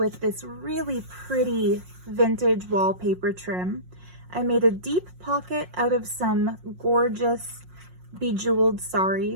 this really pretty vintage wallpaper trim. I made a deep pocket out of some gorgeous bejeweled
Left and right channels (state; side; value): late; left; 5.5 ms